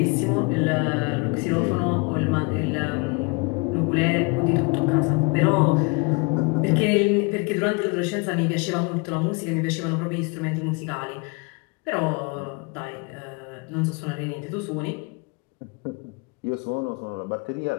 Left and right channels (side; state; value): right; quieter; 30.0 dB